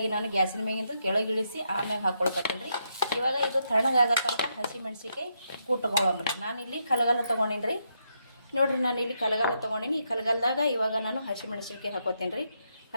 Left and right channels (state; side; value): inverted; both; correlation -0.80